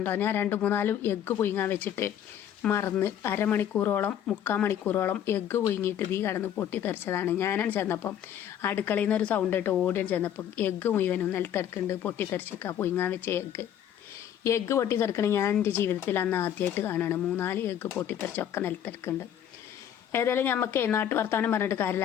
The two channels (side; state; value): right; quieter; 10.0 dB